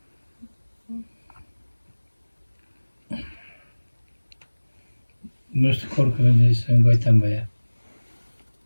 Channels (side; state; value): both; inverted; correlation -1.00